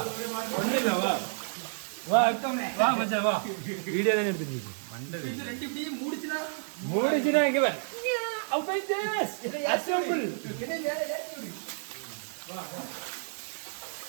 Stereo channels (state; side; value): silent; left; 58 dB below the other